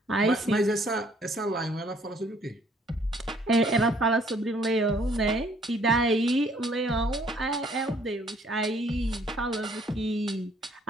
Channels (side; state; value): both; normal; correlation 0.62